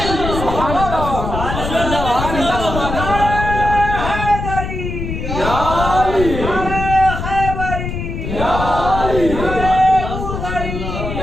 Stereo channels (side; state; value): left; noise; rumble, 5 dB below the sound